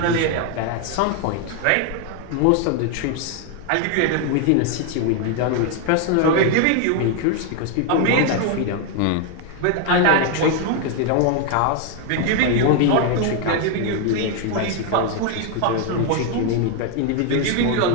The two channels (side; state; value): both; different; correlation 0.01